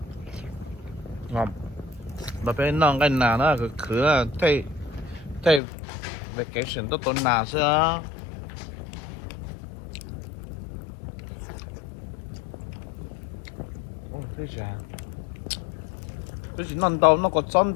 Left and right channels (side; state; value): right; drops out; at 5.6 s